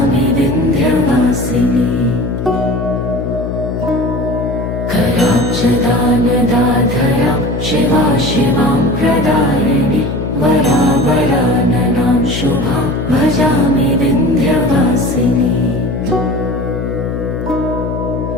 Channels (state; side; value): noise; left; hum, 4 dB below the sound